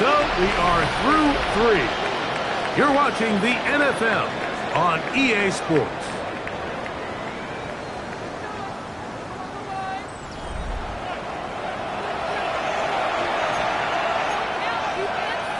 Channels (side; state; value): both; identical; correlation 1.00